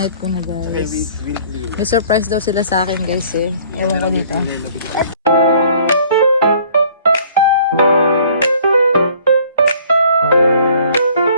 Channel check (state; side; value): inverted; both; correlation -0.56